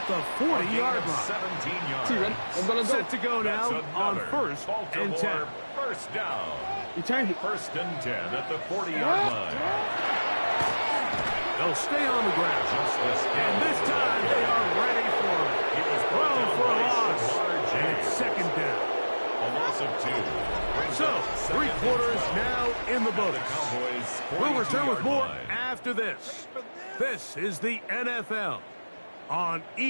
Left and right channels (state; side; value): inverted; both; correlation -1.00